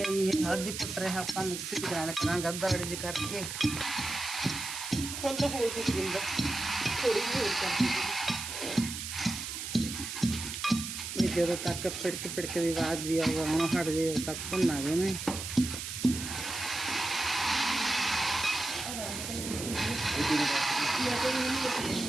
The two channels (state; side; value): noise; right; hiss, 6 dB below the sound